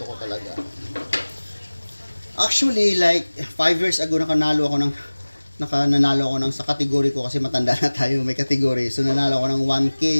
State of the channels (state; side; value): inverted; both; correlation -1.00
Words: ko talaga. Actually, like 5 years ago nanalo ako ng sa category ko kasi matanda na tayo, may category. So nanalo ako ng